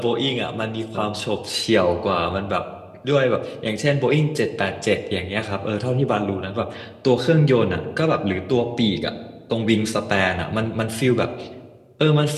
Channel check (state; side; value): identical; both; correlation 1.00